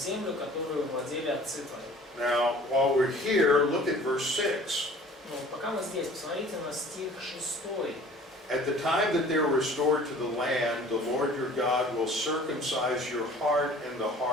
которую владели отцы твои. Now, while we're here, look at verse 6. Ну, пока мы здесь, посмотрите на стих 6. At the time that they're restored to the land, the Lord your God will circumcise your heart and the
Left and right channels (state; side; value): normal; both; correlation 0.48